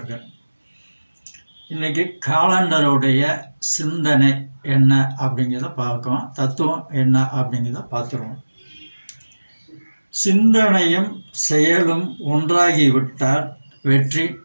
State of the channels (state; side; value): inverted; both; correlation -1.00